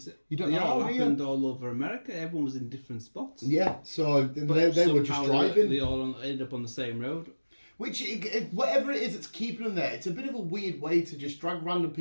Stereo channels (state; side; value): inverted; both; correlation -1.00